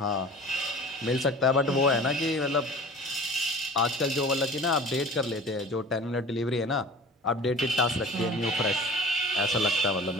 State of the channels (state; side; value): normal; both; correlation 0.41